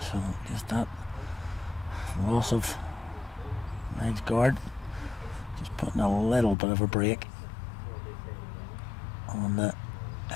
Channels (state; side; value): drops out; right; at 6.6 s